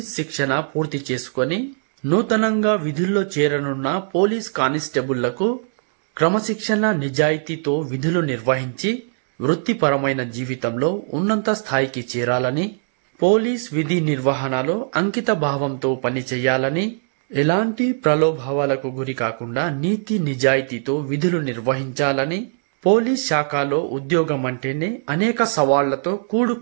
శిక్షణ పూర్తి చేసుకొని నూతనంగా విధుల్లో చేరనున్న పోలీస్ కానిస్టేబుళ్లకు క్రమశిక్షణ నిజాయితీతో విధులు నిర్వహించి వృత్తిపరమైన జీవితంలో ఉన్నత స్థాయికి చేరాలని, పోలీస్ విధి నిర్వహణలో అంకిత భావంతో పనిచేయాలని, ఎలాంటి ప్రలోభాలకు గురి కాకుండా నీతి నిజాయితీతో విధులు నిర్వహించాలని, పోలీస్ శాఖలో ఉద్యోగం అంటేనే అనేక సవాళ్లతో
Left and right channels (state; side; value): silent; left; digital silence